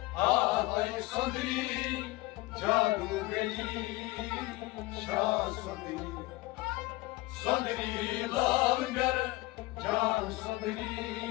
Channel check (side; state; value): right; quieter; 20.6 dB